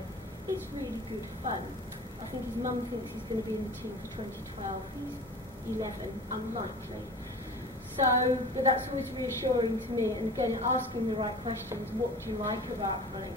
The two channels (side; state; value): both; normal; correlation 0.38